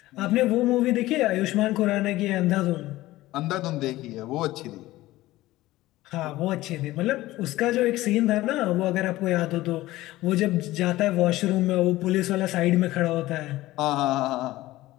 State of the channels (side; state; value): right; quieter; 17.1 dB